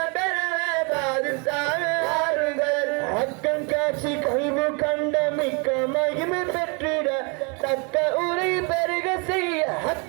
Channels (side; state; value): left; quieter; 33.1 dB